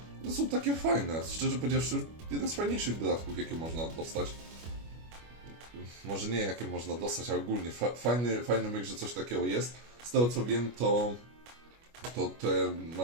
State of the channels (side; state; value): left; late; 25 ms